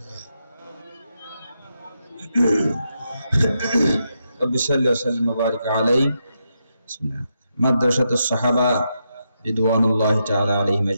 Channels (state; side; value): inverted; both; correlation -0.84